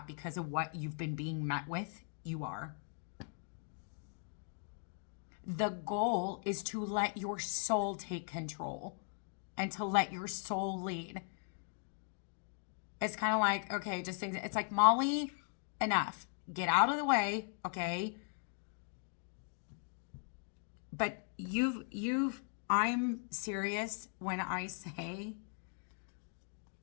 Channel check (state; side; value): silent; right; 52 dB below the other